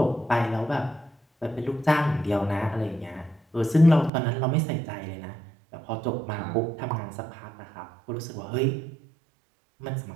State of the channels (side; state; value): left; drops out; at 4.1 s